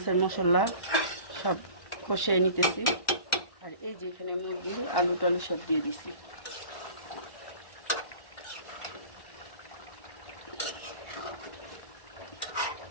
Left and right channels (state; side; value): late; right; 1.1 ms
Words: মশলা সব কষিয়ে নিতেছি। আর এই যে এখানে মুরগির আলু টালু সব দিয়ে দিছি।